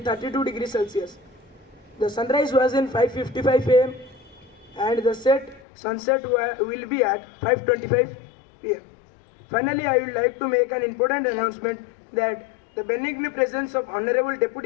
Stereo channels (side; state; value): right; drops out; at 5.6 s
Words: degrees Celsius. The sunrise was in 5:55 am and the sunset will be at 5:25 pm. Finally, I would like to make an important announcement that the benign presence of Honorable